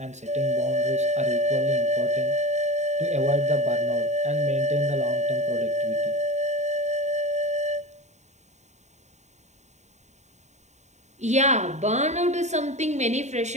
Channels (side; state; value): left; late; 0.34 ms